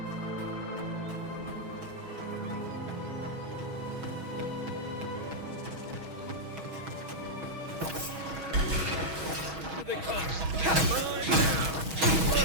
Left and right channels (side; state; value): left; late; 6.3 ms